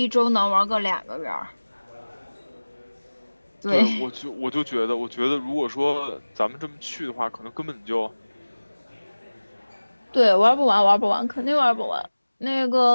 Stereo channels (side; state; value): both; inverted; correlation -1.00